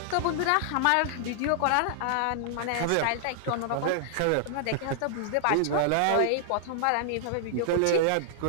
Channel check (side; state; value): both; different; correlation -0.01